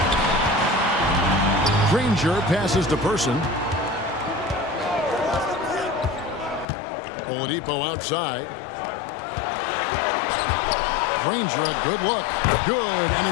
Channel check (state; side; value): drops out; right; at 6.7 s